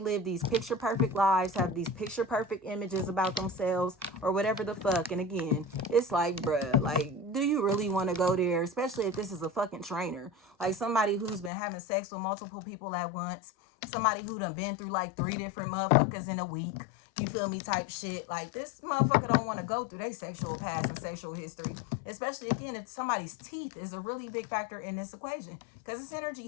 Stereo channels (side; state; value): right; drops out; at 11.5 s